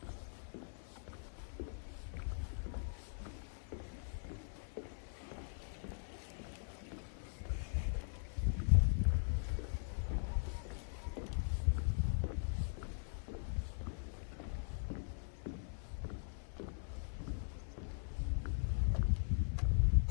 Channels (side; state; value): right; silent; 50 dB below the other